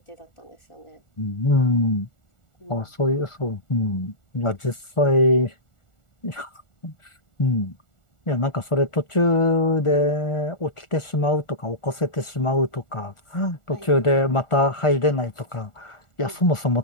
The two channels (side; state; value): right; late; 1.4 ms